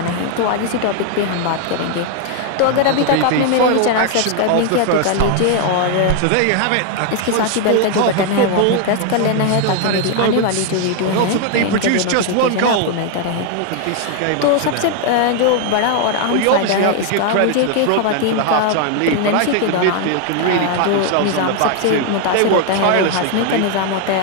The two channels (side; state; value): both; different; correlation 0.00